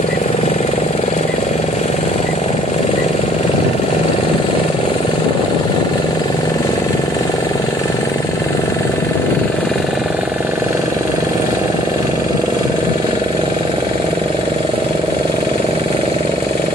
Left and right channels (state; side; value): normal; both; correlation 0.59